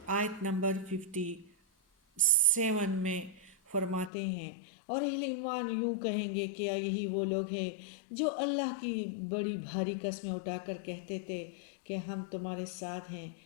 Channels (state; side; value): drops out; right; at 4.1 s